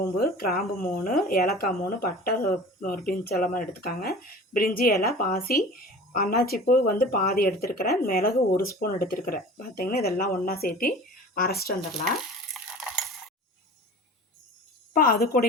கிராம்பு 3, ஏலக்காய் 3, பட்டை ஒரு பிஞ்ச் எல்லாமே எடுத்துக்காங்க. பிரிஞ்சி இலை, பாசி, அன்னாச்சிப்பூ வந்து பாதி எடுத்துருக்கிறேன். மிளகு 1 ஸ்பூன் எடுத்துருக்கிறேன். பார்த்திங்கன்னா இதெல்லாம் ஒன்றா சேர்த்து அரைச்சிட்டு வந்துடலாம். இப்போ அது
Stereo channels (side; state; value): both; normal; correlation 0.40